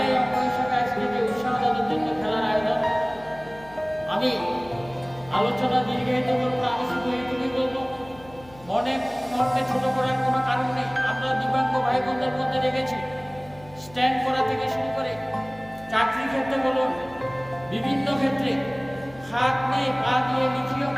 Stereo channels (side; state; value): left; noise; hum, 22 dB below the sound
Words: অঙ্গ হিসেবে আজকে যে উৎসাহ দেওয়ার জন্য খেলার আয়োজন। আমি আলোচনা দীর্ঘায়িত করবো না, আমি শুধু এইটুকুই বলবো, মনকে ছোট করার কোনো কারণ নেই। আমরা দিব্যাঙ্গ ভাই বোনদের মধ্যে দেখেছি, স্ট্যান্ড করা থেকে শুরু করে চাকরি ক্ষেত্রে বলুন, বিভিন্ন ক্ষেত্রে হাত নেই, পা দিয়ে লিখিয়েও